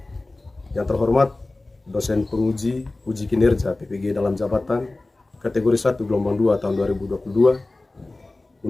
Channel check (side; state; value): right; quieter; 3.0 dB